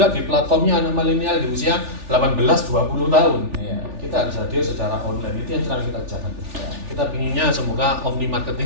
di platformnya anak milenial di usia 18-20 tahun. Kita harus hadir secara online. Itu yang sedang kita kerjakan. Kita pinginnya semoga omni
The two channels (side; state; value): left; late; 3.4 ms